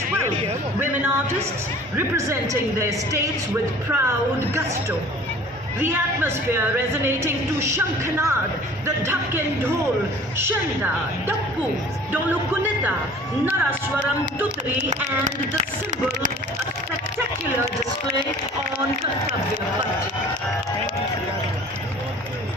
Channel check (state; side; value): normal; both; correlation 0.47